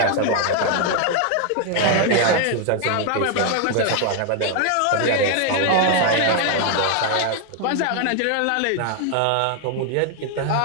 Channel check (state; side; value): different; both; correlation 0.00